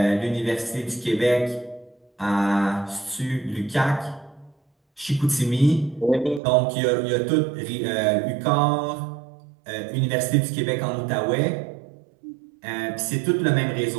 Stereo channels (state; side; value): drops out; left; at 6.4 s